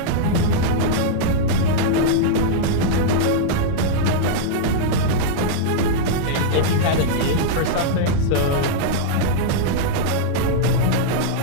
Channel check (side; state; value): both; different; correlation -0.02